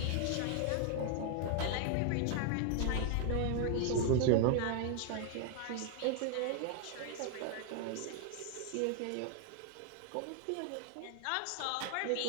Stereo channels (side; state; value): both; different; correlation 0.00